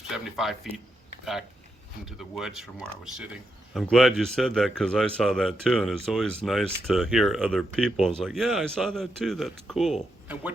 feet back into the woods from where I was sitting. I'm glad you said that because I saw that too, and it's always nice to hear other people. It's like, yeah, I saw that too. That's cool. And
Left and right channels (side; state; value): both; normal; correlation 0.83